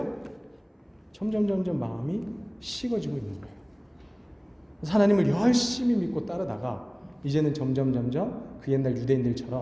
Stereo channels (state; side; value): identical; both; correlation 1.00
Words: 점점 마음이 식어지고 있는 거예요. 하나님을 열심히 믿고 따르다가 이제는 점점 그 옛날